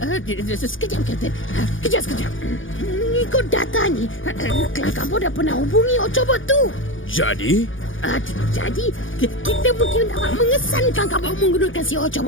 Sekejap, Kapten. Kejap. Ikut data ni, Kang Kabut dah pernah hubungi Ocobot tu. Jadi? Jadi, kita mungkin dapat mengesan Kang Kabut menggunakan si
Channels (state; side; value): late; right; 0.57 ms